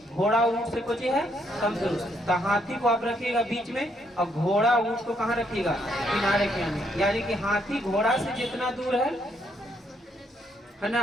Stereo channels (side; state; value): both; normal; correlation 0.73